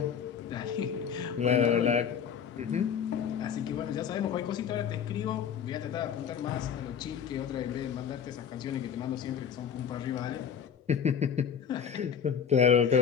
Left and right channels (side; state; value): right; quieter; 7.6 dB